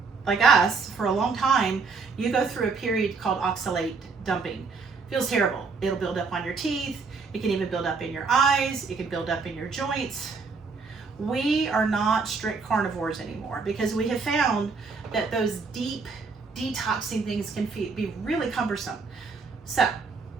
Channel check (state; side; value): quieter; left; 4.7 dB